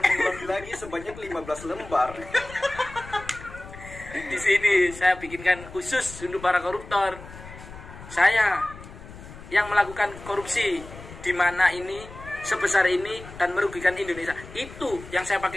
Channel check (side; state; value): left; noise; rumble, 16 dB below the sound